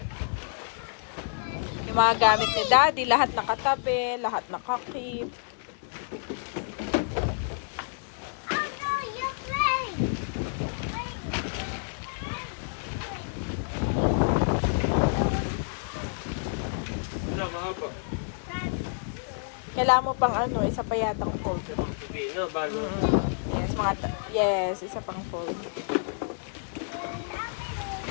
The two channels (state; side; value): silent; right; digital silence